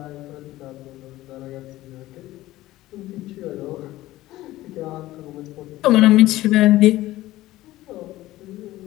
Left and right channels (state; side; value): quieter; right; 16.4 dB